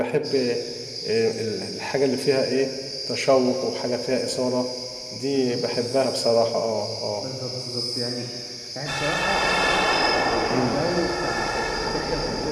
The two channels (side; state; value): both; identical; correlation 1.00